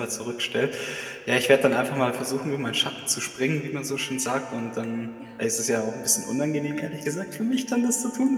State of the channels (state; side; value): identical; both; correlation 1.00